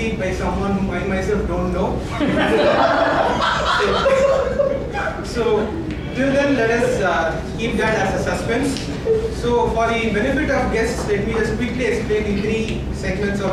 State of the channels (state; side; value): identical; both; correlation 1.00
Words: by someone whom I myself don't know. So till then, let us keep that as a suspense. So for the benefit of guests, let me just quickly explain the three segments